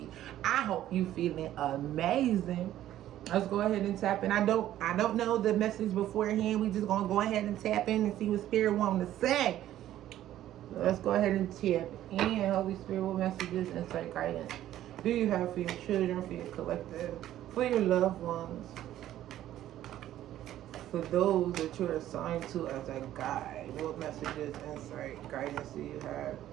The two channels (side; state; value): left; quieter; 12.8 dB